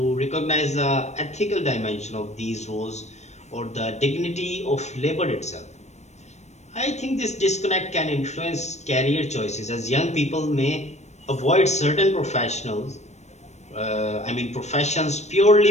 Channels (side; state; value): right; late; 0.33 ms